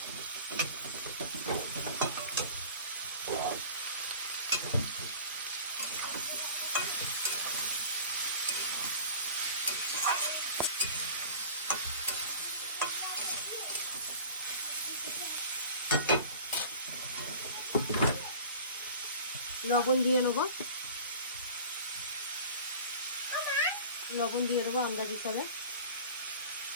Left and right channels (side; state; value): both; inverted; correlation -0.41